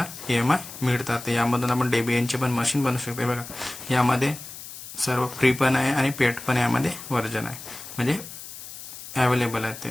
EMI मिळतात. यामधून आपण डेबियनचे पण मशीन बनवू शकतो. बघा यामध्ये सर्व फ्री पण आहे आणि पेड पण यामध्ये वर्जन आहे, म्हणजे अवेलेबल आहे ते.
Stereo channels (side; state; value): left; noise; hiss, 13 dB below the sound